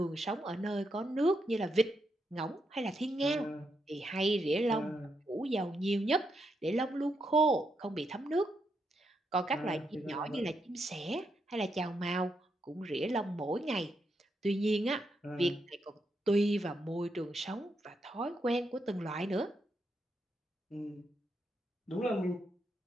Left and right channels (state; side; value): normal; both; correlation 0.81